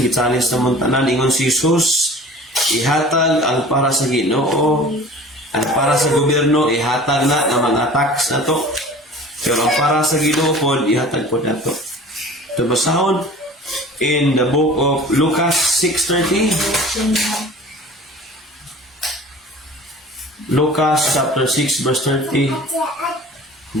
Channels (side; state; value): both; normal; correlation 0.43